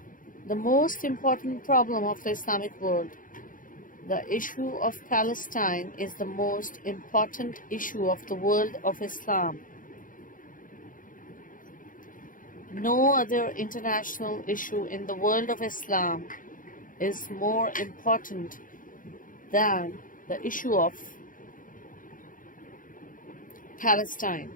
the most important problem of the Islamic world. The issue of Palestine is the most important issue of the world of Islam. No other international issue in the world of Islam is more important than the issue of Palestine.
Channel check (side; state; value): right; late; 0.39 ms